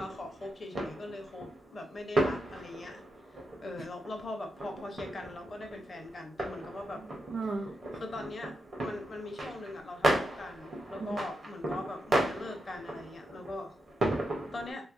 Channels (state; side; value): normal; both; correlation 0.85